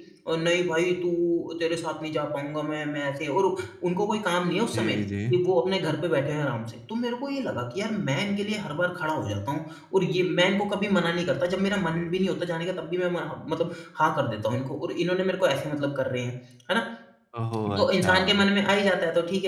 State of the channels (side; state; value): both; identical; correlation 1.00